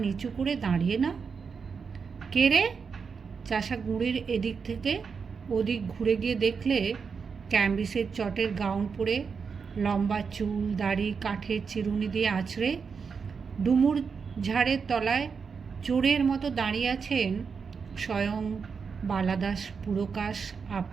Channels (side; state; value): left; quieter; 5.7 dB